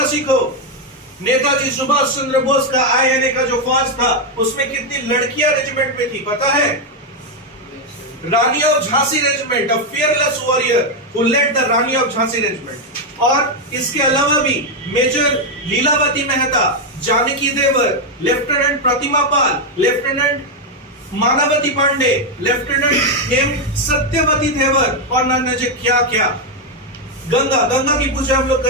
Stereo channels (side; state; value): both; normal; correlation 0.03